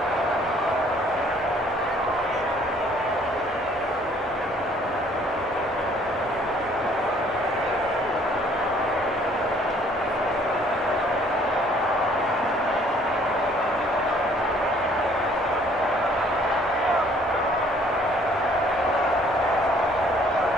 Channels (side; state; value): both; normal; correlation 0.59